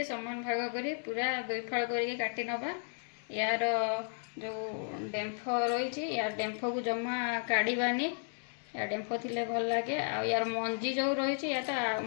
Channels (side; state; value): right; silent; 55 dB below the other